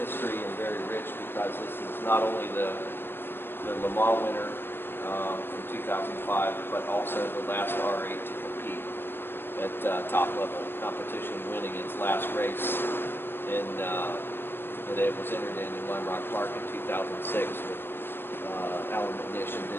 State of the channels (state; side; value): late; right; 0.10 ms